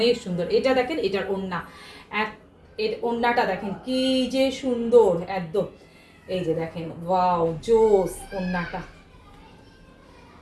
সুন্দর। এটা দেখেন, এটার ওড়না, এর ওড়নাটা দেখেন কি যে সুন্দর একদম। এই যে দেখেন, ওয়াও জোস ওড়নাটা।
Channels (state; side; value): identical; both; correlation 1.00